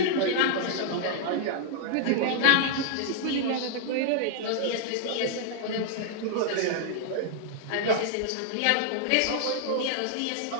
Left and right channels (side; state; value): both; different; correlation -0.01